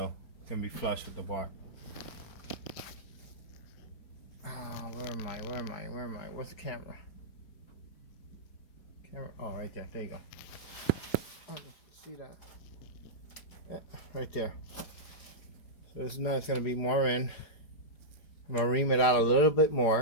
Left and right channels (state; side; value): late; right; 4.8 ms